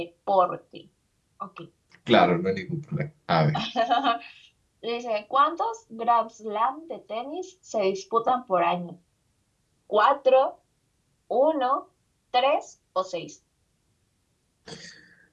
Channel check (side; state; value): both; identical; correlation 1.00